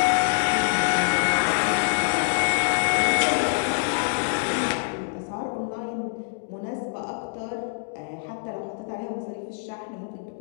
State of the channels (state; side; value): silent; right; digital silence